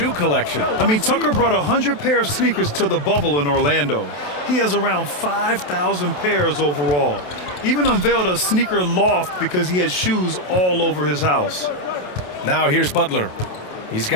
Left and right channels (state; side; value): late; right; 27 ms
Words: collection. I mean, Tucker brought 100 pair of sneakers to the bubble in Orlando. He has around 5,000 pairs overall. Even unveiled a sneaker loft because he has shoes all over his house. Now here's Butler. He's